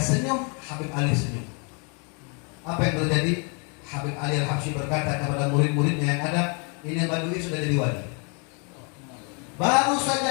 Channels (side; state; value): right; quieter; 35.9 dB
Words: Habib Ali senyum. Apa yang terjadi? Habib Ali Al-Habsyi berkata kepada murid-muridnya yang ada, ini Badui sudah jadi wali. Baru